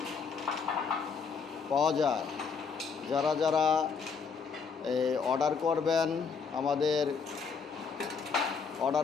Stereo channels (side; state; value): right; quieter; 5.6 dB